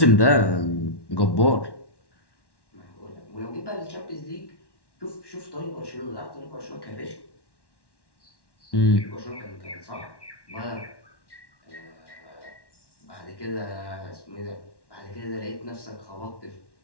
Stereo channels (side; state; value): right; late; 1.1 ms